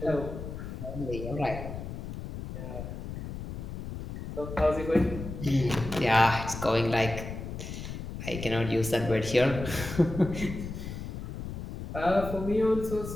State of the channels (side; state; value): left; noise; rumble, 8 dB below the sound